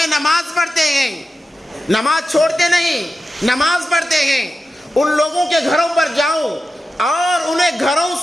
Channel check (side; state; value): both; normal; correlation 0.92